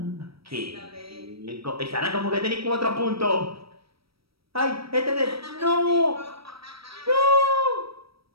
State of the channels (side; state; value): left; late; 0.76 ms